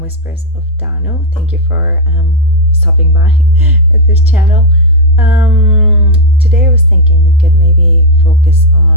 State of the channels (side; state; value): both; normal; correlation 0.00